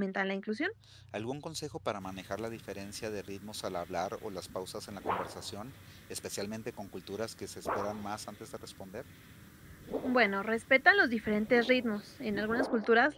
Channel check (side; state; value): both; identical; correlation 1.00